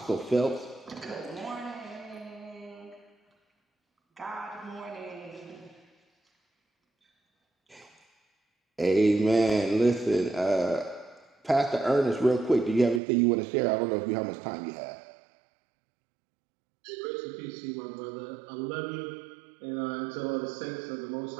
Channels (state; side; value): drops out; left; at 13.0 s